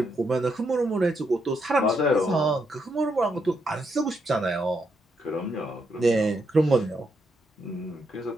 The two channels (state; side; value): normal; both; correlation 0.79